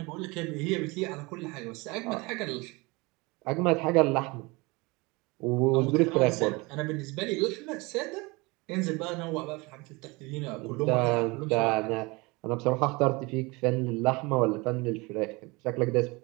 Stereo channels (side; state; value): left; quieter; 25.1 dB